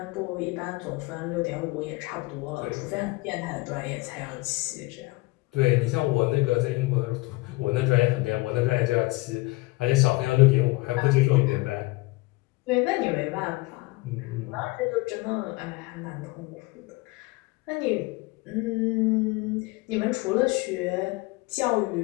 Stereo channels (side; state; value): right; quieter; 22.8 dB